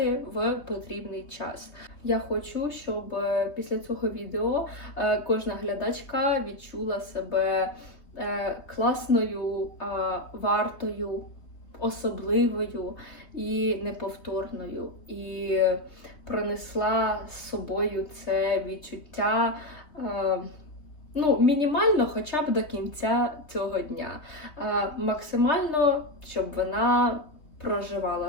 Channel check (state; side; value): late; right; 3.2 ms